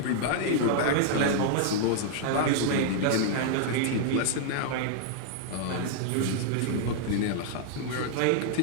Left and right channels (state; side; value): different; both; correlation -0.01